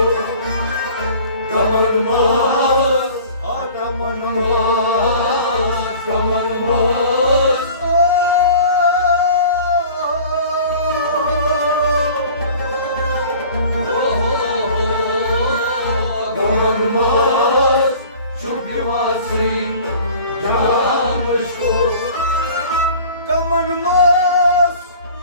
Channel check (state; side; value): inverted; both; correlation -0.45